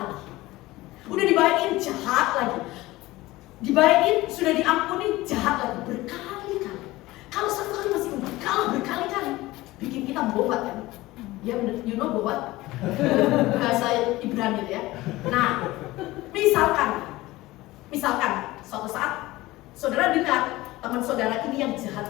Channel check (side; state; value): right; quieter; 18.7 dB